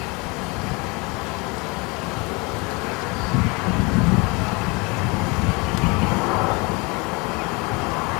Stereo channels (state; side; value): quieter; right; 27.4 dB